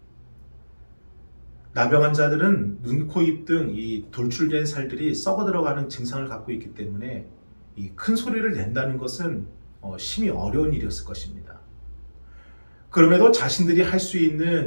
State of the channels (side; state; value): both; inverted; correlation -1.00